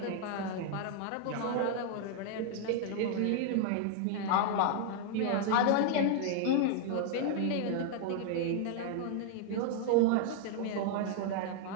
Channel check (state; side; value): different; both; correlation 0.00